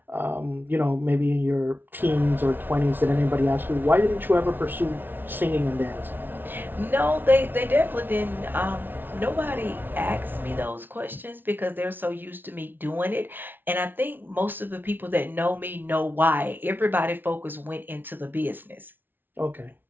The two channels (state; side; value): late; left; 0.096 ms